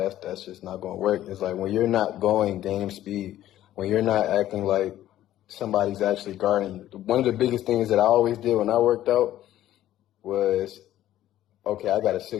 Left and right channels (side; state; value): right; quieter; 13.2 dB